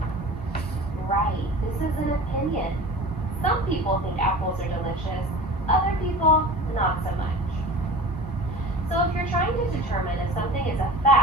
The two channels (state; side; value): normal; both; correlation 0.37